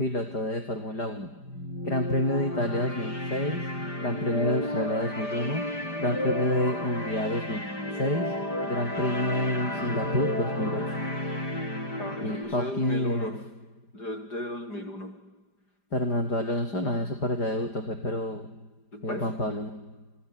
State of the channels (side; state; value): right; late; 5.0 ms